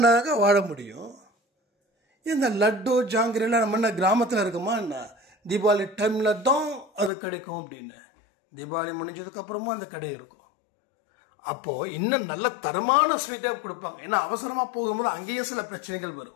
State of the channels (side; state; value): right; drops out; at 7.1 s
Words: வாழ முடியும். இந்த லட்டு ஜாங்கிரிலாம் நம்ம என்ன கிராமத்தில் இருக்குமா என்ன? தீபாவளி டைமில் தான் அது கிடைக்கும் அப்படின்னு. தீபாவளி முடிஞ்சதுக்கப்புறமும் அந்த கடை இருக்கும். அப்போது இன்னும் நல்ல தரமான ஸ்வீட்டாக கொடுப்பாங்க. ஏன்னா அவசரமாக போகும்போது அங்கேயும் சில பிரச்சனைகள்